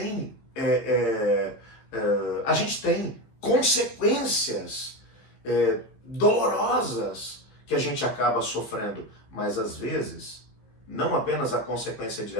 consequências dolorosas que a gente acaba sofrendo, mas às vezes não apenas a consequência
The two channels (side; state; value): right; late; 15 ms